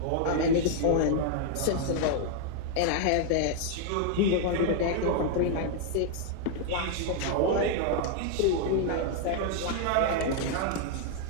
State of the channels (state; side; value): different; both; correlation 0.00